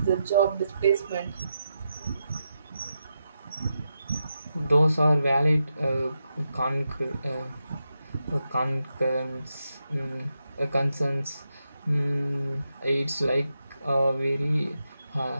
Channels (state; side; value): inverted; both; correlation -0.86